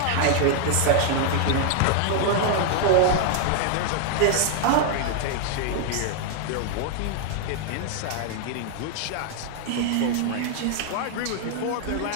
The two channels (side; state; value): both; different; correlation 0.00